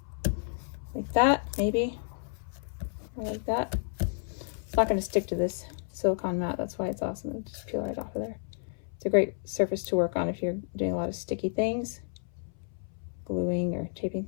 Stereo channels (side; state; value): right; silent; 57 dB below the other